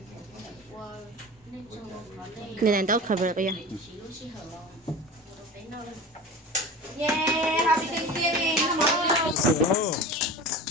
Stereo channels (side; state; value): both; normal; correlation 0.34